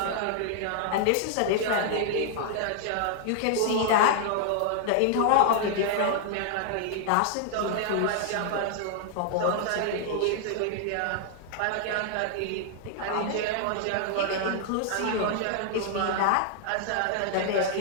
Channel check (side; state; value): both; different; correlation -0.01